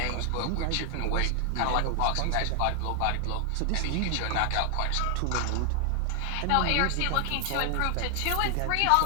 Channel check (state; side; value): different; both; correlation 0.00